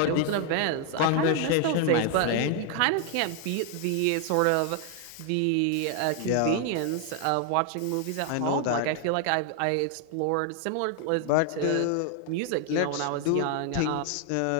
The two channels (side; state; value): both; different; correlation 0.00